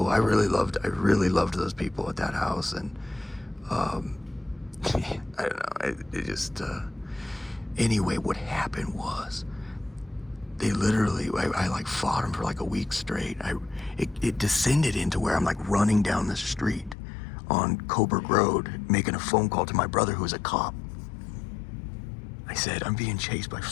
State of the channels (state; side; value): drops out; right; at 16.9 s